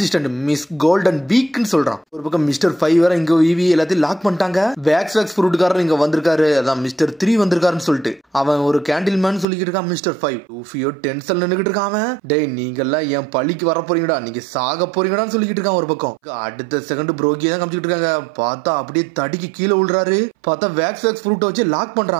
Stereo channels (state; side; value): drops out; left; at 9.5 s